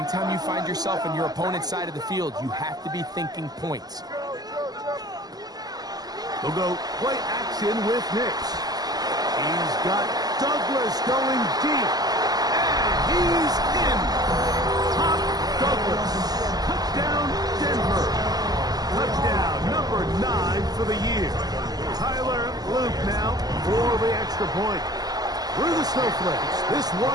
you find yourself on your opponent's side of the field, you have to be thinking points. They'll go play action with Nix. He's got Douglas going deep. And he's in. Top Douglas. Touchdown, Denver. Touchdown, number 9 for the year. Tyler Luke now for the extra point. Through the snowflakes. This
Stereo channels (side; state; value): left; late; 0.19 ms